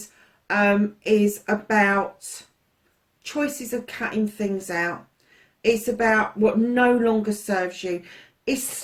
is about choices of cutting things out. It's about what no longer serves you. It's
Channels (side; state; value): both; identical; correlation 1.00